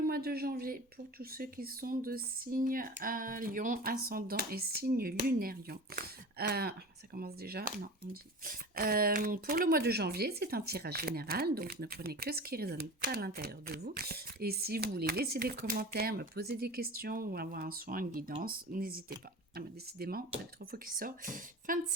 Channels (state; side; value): normal; both; correlation 0.34